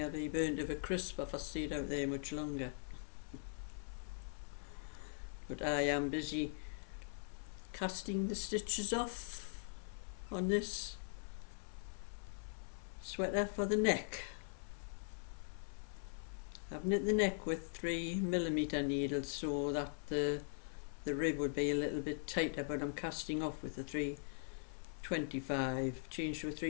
I'd be burned of a crisp if I stayed out there much longer. But I am busy casting the stitches off on this sweater for the neck. I've knit the neck with 3mm needles so that the rib would be a little bit tighter, but I'm casting off with the 325, changed to a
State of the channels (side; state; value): right; silent; 50 dB below the other